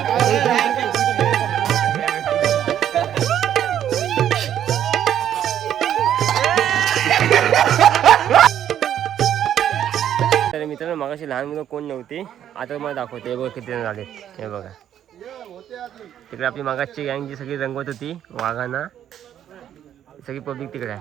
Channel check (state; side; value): quieter; left; 10.4 dB